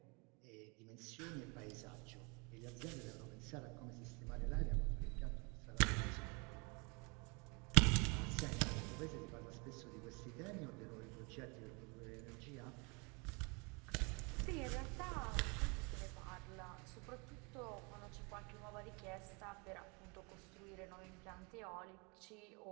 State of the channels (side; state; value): left; quieter; 30.9 dB